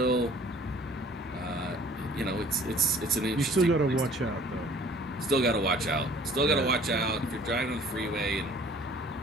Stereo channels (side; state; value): both; normal; correlation 0.52